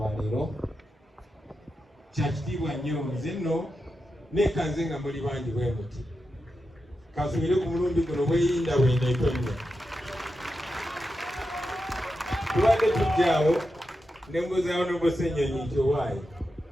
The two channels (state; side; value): normal; both; correlation 0.89